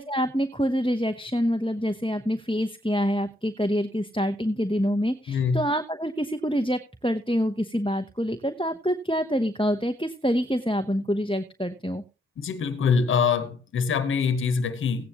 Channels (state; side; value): normal; both; correlation 0.73